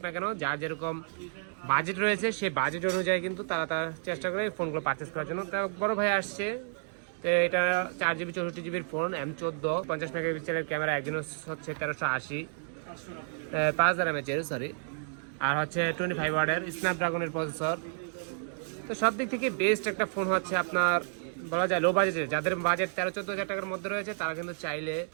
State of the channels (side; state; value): left; silent; digital silence